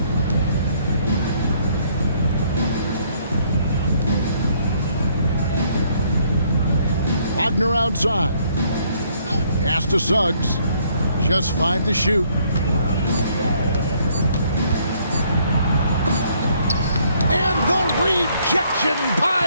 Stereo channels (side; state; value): both; inverted; correlation -0.66